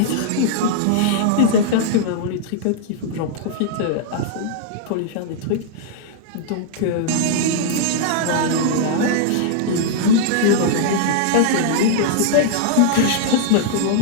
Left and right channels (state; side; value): different; both; correlation -0.01